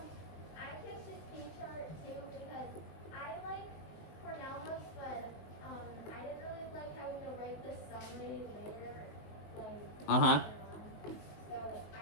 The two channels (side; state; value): right; late; 20 ms